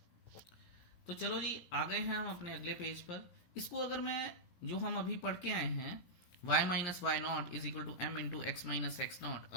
तो चलो जी आ गए हैं हम अपने अगले पेज पर। इसको अगर मैं जो हम अभी पढ़ के आए हैं y minus y naught is equal to m into x minus x naught,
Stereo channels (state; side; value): late; right; 17 ms